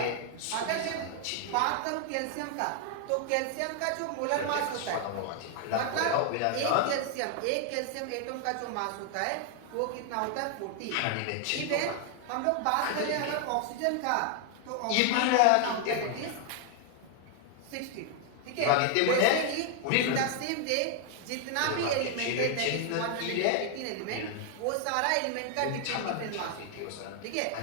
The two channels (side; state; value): both; different; correlation 0.00